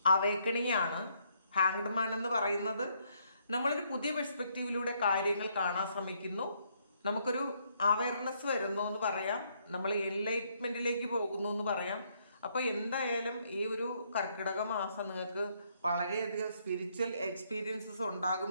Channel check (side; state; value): both; inverted; correlation -0.71